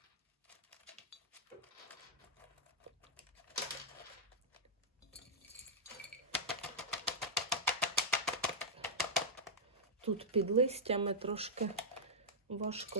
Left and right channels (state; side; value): normal; both; correlation -0.07